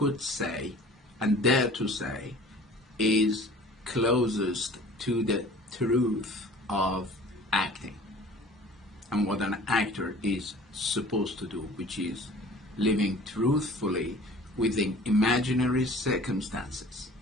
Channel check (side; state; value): both; normal; correlation 0.46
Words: say and dare to say is closest to the truth of acting and what an actor is supposed to do, which is living truthfully within imaginary circumstances